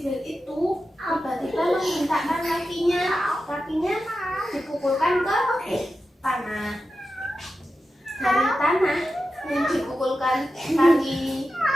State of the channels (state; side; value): normal; both; correlation 0.91